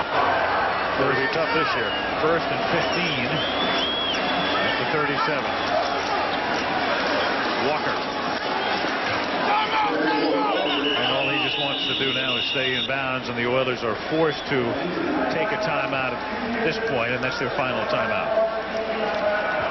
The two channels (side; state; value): both; identical; correlation 1.00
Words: It'll be tough this year. 1st and 15 at the 37. Walker. And all he just wants to do now is stay in bounds, and the Oilers are forced to take a timeout at this point, and that's their final timeout.